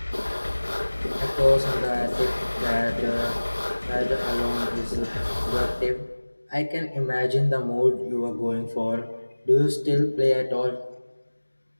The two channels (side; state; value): both; inverted; correlation -1.00